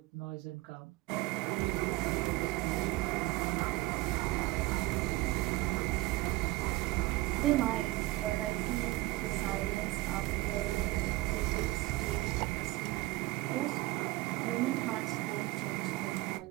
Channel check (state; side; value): quieter; left; 19.2 dB